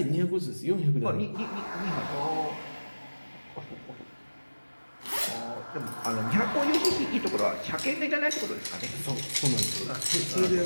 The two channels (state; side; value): inverted; both; correlation -1.00